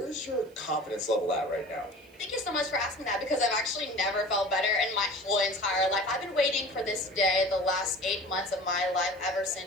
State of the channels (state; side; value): noise; right; hiss, 29 dB below the sound